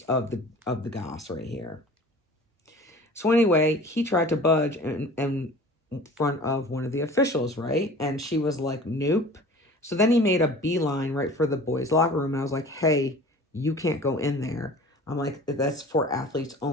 of the goss right here. So anyway, he tried to budge in front of one of the officials, right? And she was like, nope. So then he made a beeline right for the boys' locker room. And I was like, hey, you can't go in there. I'm like, that's for athletes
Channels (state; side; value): normal; both; correlation 0.43